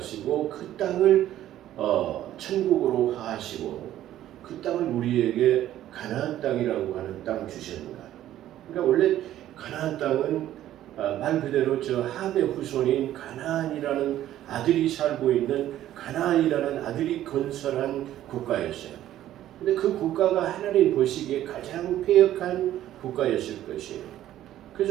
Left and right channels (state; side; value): quieter; left; 12.8 dB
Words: 그 땅을 천국으로 하시고 그 땅을 우리에게 가나안 땅이라고 하는 땅 주셨는가. 그러니까 원래 가나안 땅은 말 그대로 저 함의 후손인 가나안이라는 아들이 살고 있는 가나안이라는 아들이 건설한 국가였어요. 근데 그 국가가 하나님 보시기에 가장 패역한 국가였을 것이에요.